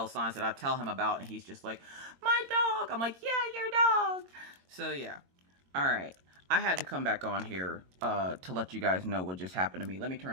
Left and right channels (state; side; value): late; left; 22 ms